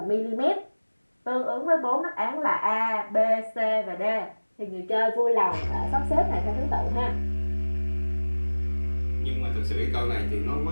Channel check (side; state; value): both; inverted; correlation -1.00